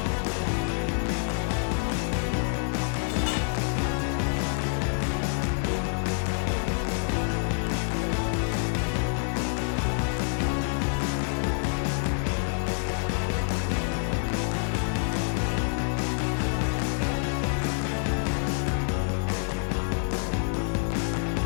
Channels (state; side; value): silent; right; 60 dB below the other